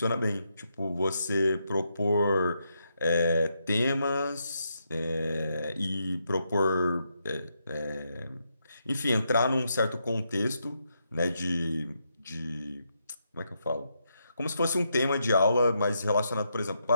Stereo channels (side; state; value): both; inverted; correlation -0.81